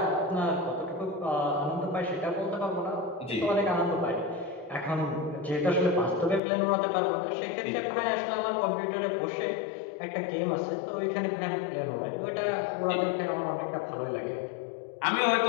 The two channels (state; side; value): drops out; right; at 6.4 s